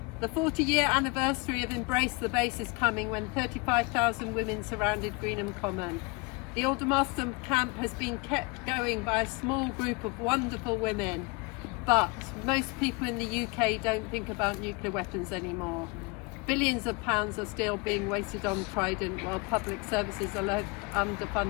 The 40-year anniversary of Embrace the Base is coming when 35,000 women surrounded Greenham Common. The Aldermaston camp has been kept going by a small group of wonderful women, but most people in the UK don't think about nuclear weapons anymore. Billions of pounds are still being wasted on Trident while public services are left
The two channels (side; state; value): right; quieter; 28.1 dB